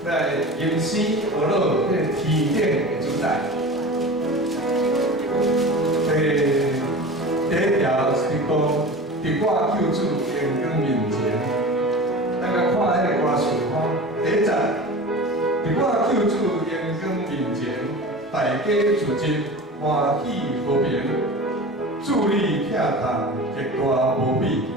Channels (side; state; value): both; normal; correlation 0.34